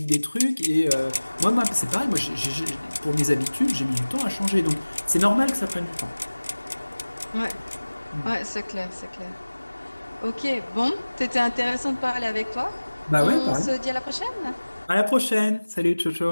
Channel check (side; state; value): both; inverted; correlation -1.00